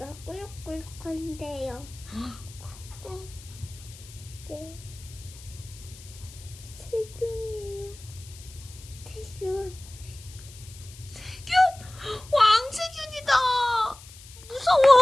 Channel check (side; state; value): left; noise; hiss, 19 dB below the sound